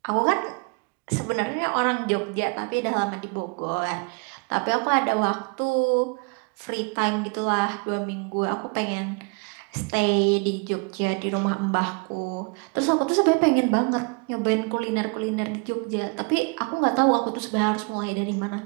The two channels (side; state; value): left; quieter; 32.3 dB